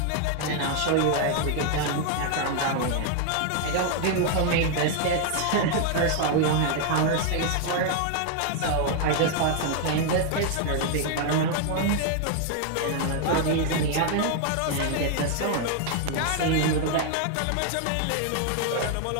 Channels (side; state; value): both; different; correlation 0.00